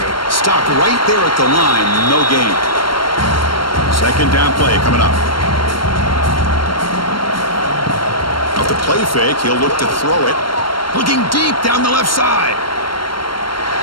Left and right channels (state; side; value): late; right; 0.72 ms